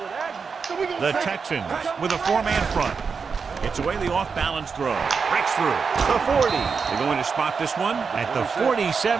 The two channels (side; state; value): left; quieter; 5.5 dB